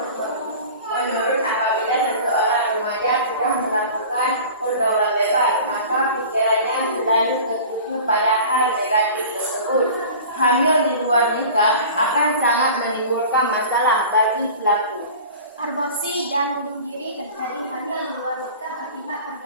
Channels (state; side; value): inverted; both; correlation -0.40